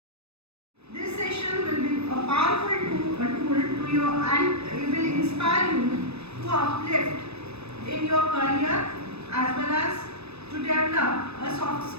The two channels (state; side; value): late; left; 0.79 ms